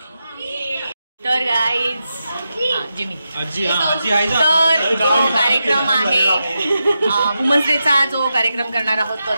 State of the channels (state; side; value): inverted; both; correlation -0.88